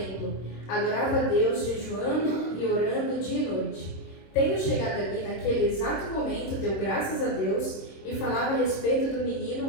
adorava a Deus jejuando e orando dia e noite. Tendo chegado ali naquele exato momento, deu graças a Deus e falava a respeito do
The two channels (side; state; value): right; late; 23 ms